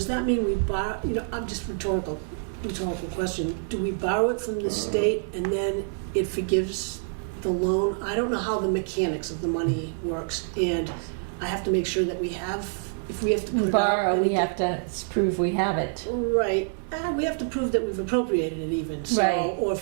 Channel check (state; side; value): silent; left; digital silence